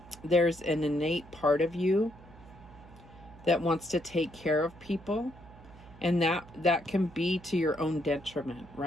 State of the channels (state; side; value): noise; right; hum, 21 dB below the sound